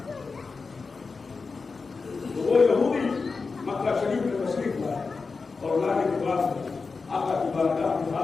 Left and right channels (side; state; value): right; quieter; 4.5 dB